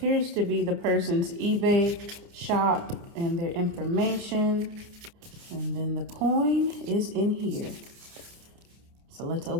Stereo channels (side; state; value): left; late; 29 ms